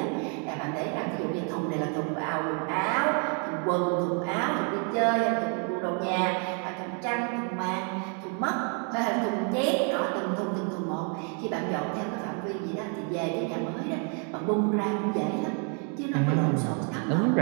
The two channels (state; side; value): quieter; left; 39.5 dB